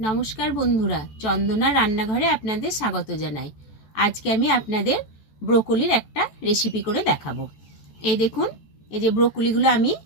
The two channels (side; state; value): right; late; 14 ms